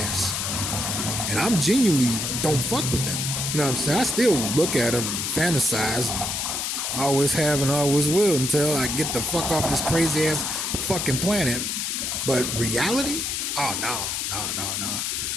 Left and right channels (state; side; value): noise; left; hiss, 1 dB below the sound